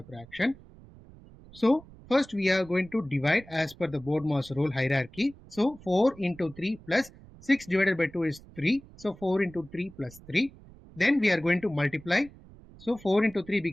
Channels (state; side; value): noise; right; rumble, 21 dB below the sound